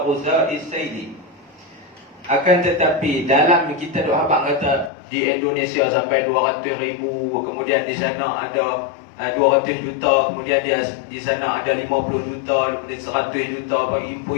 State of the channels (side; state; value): right; drops out; at 4.9 s